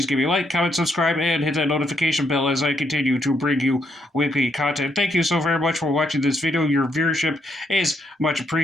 give me a like, comment, subscribe, and hit that notification bell as I continue to bring you weekly content. Thank you so very much for watching this video. Your viewership is much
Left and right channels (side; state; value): both; normal; correlation 0.75